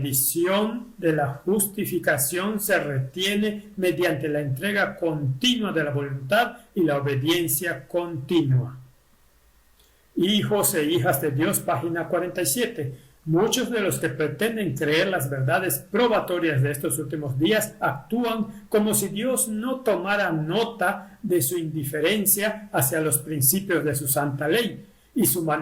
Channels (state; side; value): identical; both; correlation 1.00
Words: de la justificación se retiene mediante la entrega continua de la voluntad y la obediencia continua. Hijos e hijas de Dios, página 47. Muchos de los que pretenden creer las verdades probatorias de estos últimos días actúan como si Dios no tomara nota de su indiferencia hacia los principios de su santa ley y su